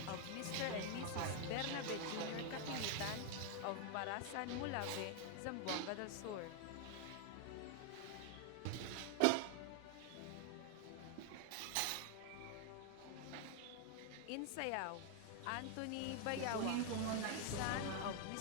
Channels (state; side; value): different; both; correlation 0.00